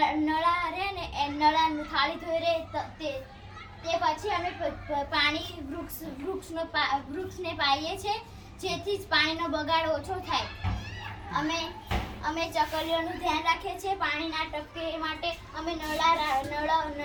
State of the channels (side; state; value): both; identical; correlation 1.00